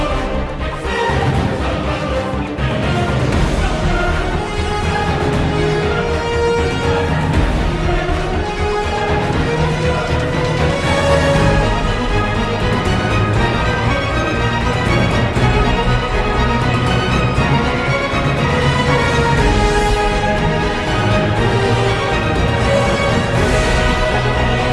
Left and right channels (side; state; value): both; identical; correlation 1.00